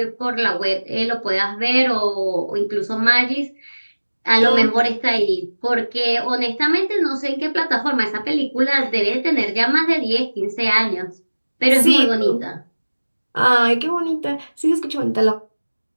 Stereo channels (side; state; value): both; inverted; correlation -1.00